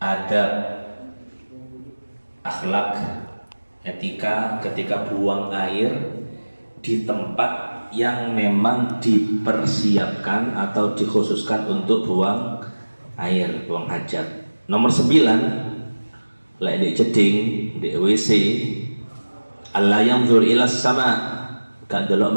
adab, akhlak, etika ketika buang air di tempat yang memang dipersiapkan atau dikhususkan untuk buang air, buang hajat. Nomor 9, lek di jeding, di WC, Allah yanzur ilas sama, gak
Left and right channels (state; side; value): inverted; both; correlation -1.00